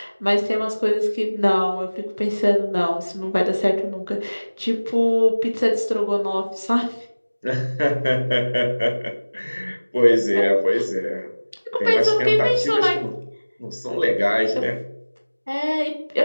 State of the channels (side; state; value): both; inverted; correlation -1.00